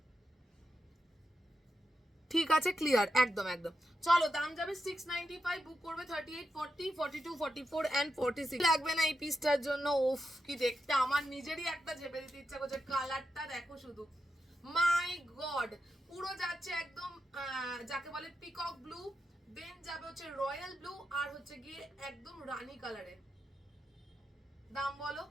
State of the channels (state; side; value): normal; both; correlation 0.87